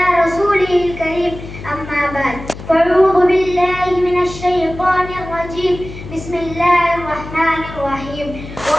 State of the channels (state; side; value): noise; left; hum, 13 dB below the sound